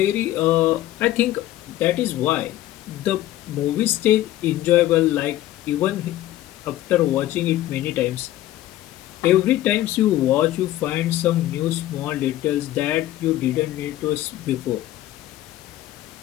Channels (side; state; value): right; quieter; 14.4 dB